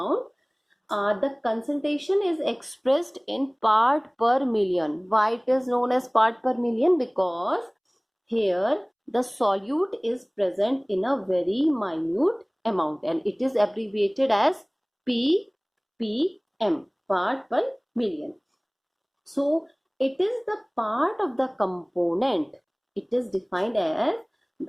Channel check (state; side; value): identical; both; correlation 1.00